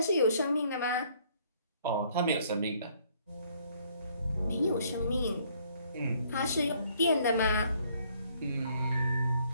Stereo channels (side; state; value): both; inverted; correlation -0.64